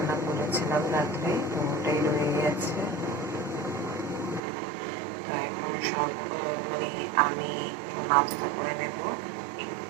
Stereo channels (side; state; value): left; drops out; at 4.4 s